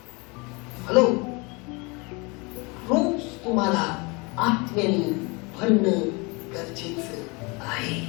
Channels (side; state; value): right; quieter; 28.1 dB